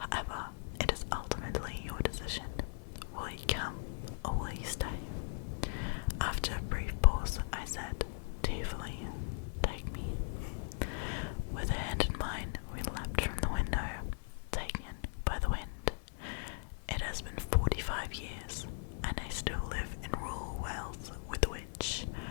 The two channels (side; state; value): right; silent; 52 dB below the other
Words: it is ultimately your decision. Will you come, or will you stay?" After a brief pause, I said, tearfully, "Take me." With her hand in mine, we leapt from the window, taken by the wind. It has been 45 years, and I still live in rural Wales with a witch